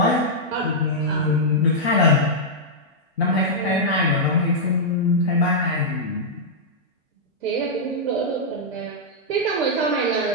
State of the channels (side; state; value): both; normal; correlation -0.07